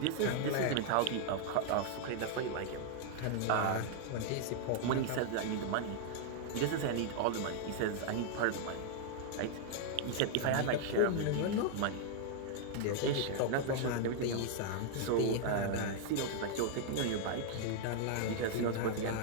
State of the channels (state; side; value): different; both; correlation 0.00